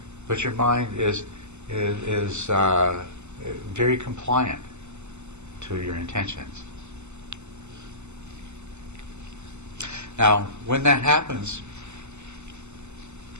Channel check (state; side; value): late; left; 0.83 ms